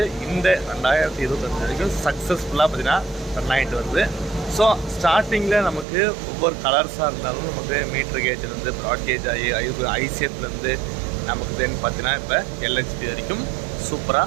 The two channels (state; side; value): drops out; left; at 5.9 s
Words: இந்த 2025 வரைக்கும் சக்ஸஸ்ஃபுல்லாக பார்த்திங்கன்னா ரன் ஆகிட்டு வருது. ஸோ ஸ்டார்டிங்கில் நமக்கு ஒவ்வொரு கலர்ஸாக இருந்தாலும் நமக்கு மீட்ரு கேஜ்லேருந்து ப்ராட் கேஜ் ஆகி ஐசிஎஃப்லேருந்து நமக்கு தென் பார்த்தீங்கன்னா இப்போ எல்ஹெச்பி வரைக்கும் சூப்பராக